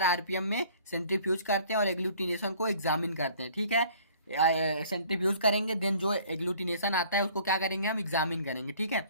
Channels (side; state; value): both; inverted; correlation -0.54